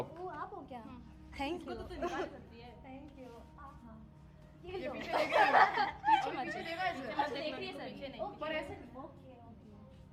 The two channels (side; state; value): both; identical; correlation 1.00